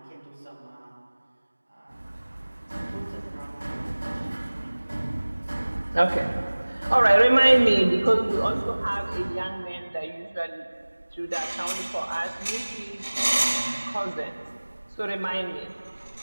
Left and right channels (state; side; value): inverted; both; correlation -1.00